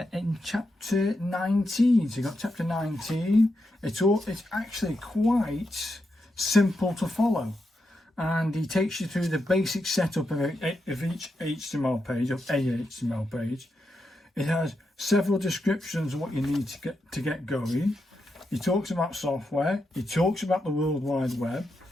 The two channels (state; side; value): normal; both; correlation 0.85